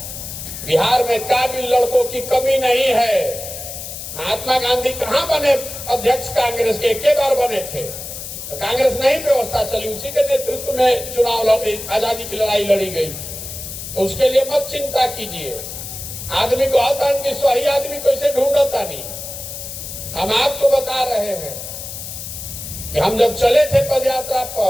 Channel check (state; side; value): noise; left; hiss, 9 dB below the sound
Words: बिहार में काबिल लड़कों की कमी नहीं है। महात्मा गांधी कहां बने अध्यक्ष कांग्रेस के? एक बार बने थे तो कांग्रेस नहीं व्यवस्था चली, उसी के नेतृत्व में चुनाव आजादी की लड़ाई लड़ी गई। तो उसके लिए मत चिंता कीजिए। आदमी को आता कि सही आदमी कैसे ढूंढता नहीं। हम आपको बता रहे हैं कि हम जब चले थे पदयात्रा